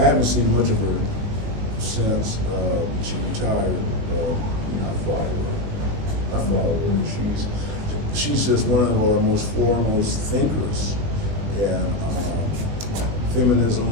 haven't seen much of her since she retired. I follow her. She's just one of our most foremost thinkers in feminism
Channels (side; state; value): left; late; 19 ms